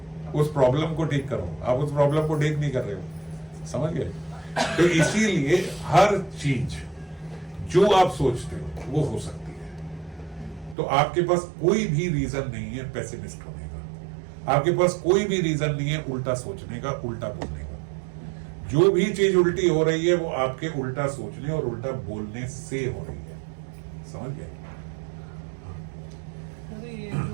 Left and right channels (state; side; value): drops out; left; at 10.8 s